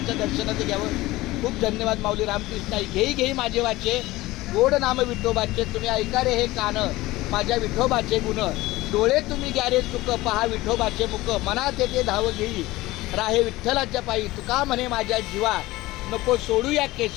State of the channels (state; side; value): quieter; right; 18.7 dB